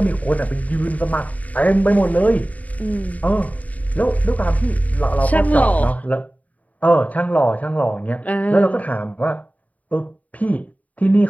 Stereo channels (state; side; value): late; right; 0.071 ms